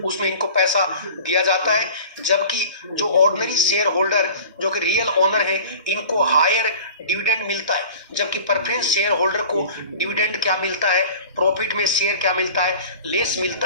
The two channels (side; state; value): both; inverted; correlation -0.41